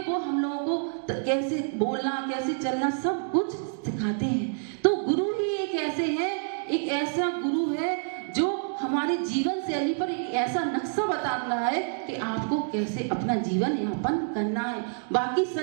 हम लोगों को कैसे बोलना, कैसे चलना, सब कुछ सिखाते हैं। तो गुरु ही एक ऐसे हैं, एक ऐसा गुरु है जो हमारी जीवन शैली पर एक ऐसा नक्शा बता रहा है कि आपको कैसे अपना जीवन यापन करना है। बाकी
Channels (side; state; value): left; silent; digital silence